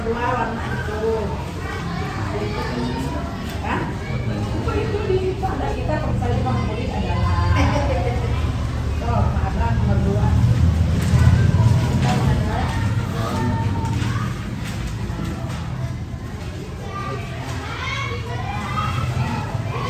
dua warna itu. Hah? Itu di pada kita saya favorit adalah ada nomor dua.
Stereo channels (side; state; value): both; identical; correlation 1.00